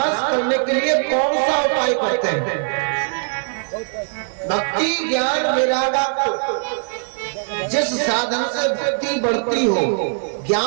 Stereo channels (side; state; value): left; silent; digital silence